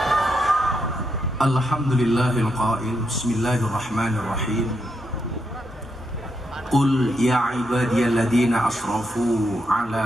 Alhamdulillahil qail bismillahirrahmanirrahim. Qul ya ibadiyalladzina asrafu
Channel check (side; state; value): both; normal; correlation 0.81